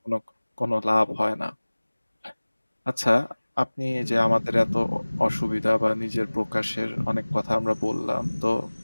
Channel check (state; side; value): inverted; both; correlation -1.00